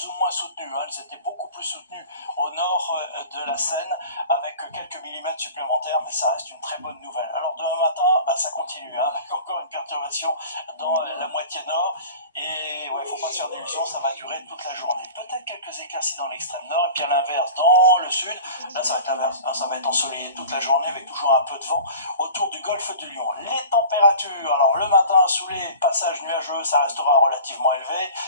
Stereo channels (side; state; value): both; inverted; correlation -0.39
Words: ou moins soutenues, elles étaient beaucoup plus soutenues au nord de la Seine avec quelques millimètres supplémentaires, mais ça reste une très bonne nouvelle. Alors demain matin, ça continue, avec encore une perturbation dans la moitié nord, et ouais, faut pas se faire d'illusions, ça va durer toute la journée. Peut-être quelques éclaircies dans l'extrême nord, et puis à l'inverse, dans le sud, là ça va être l'inverse, ça va être ensoleillé toute la journée avec toujours un peu de vent autour du golfe du Lion. Les températures, alors le matin sous les passages nuageux, ça restera relativement élevé,